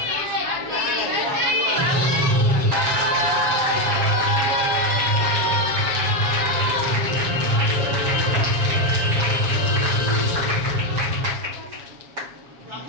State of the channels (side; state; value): left; late; 7.3 ms